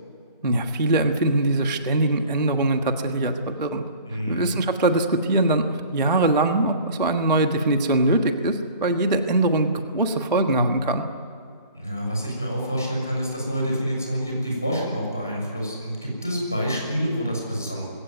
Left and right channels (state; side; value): inverted; both; correlation -0.49